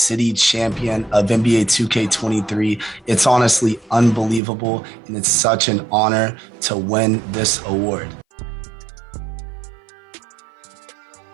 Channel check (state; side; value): drops out; left; at 4.4 s